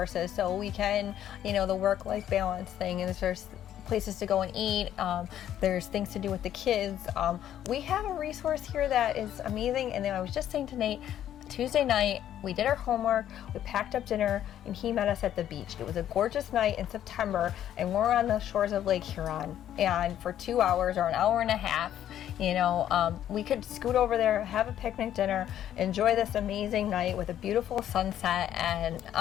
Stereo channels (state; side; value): quieter; right; 11.1 dB